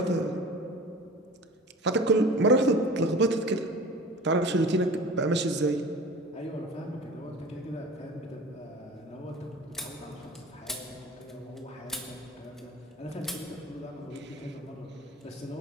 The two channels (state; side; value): normal; both; correlation 0.39